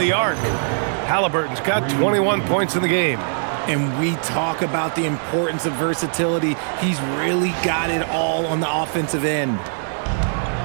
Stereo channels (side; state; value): left; silent; digital silence